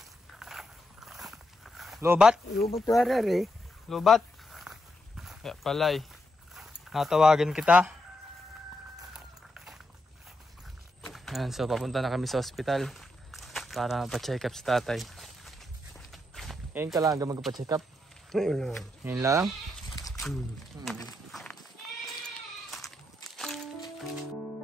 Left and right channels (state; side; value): normal; both; correlation 0.83